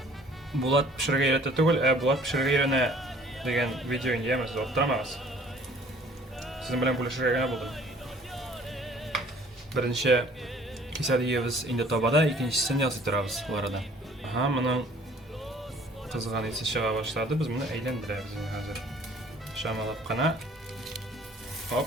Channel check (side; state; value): both; normal; correlation 0.54